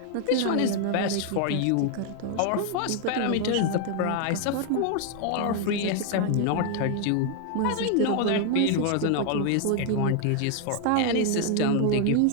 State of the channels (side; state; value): both; different; correlation 0.00